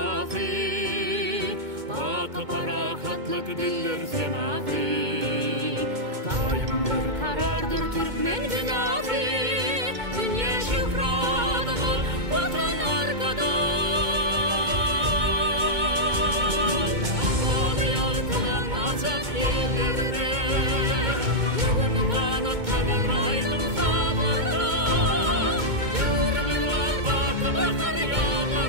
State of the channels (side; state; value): left; late; 2.2 ms